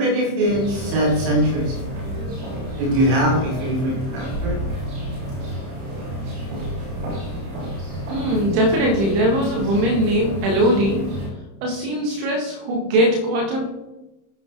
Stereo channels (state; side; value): late; left; 31 ms